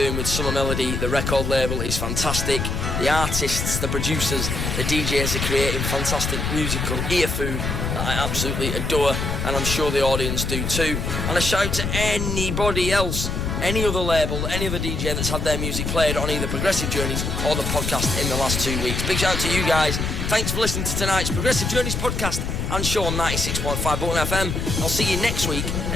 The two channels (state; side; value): noise; left; rumble, 2 dB below the sound